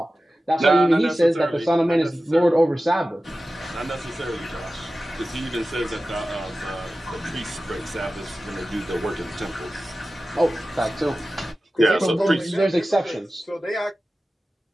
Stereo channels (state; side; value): normal; both; correlation 0.95